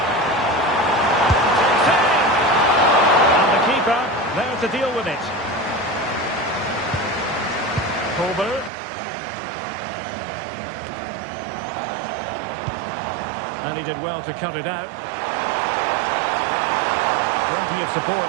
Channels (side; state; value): left; drops out; at 8.7 s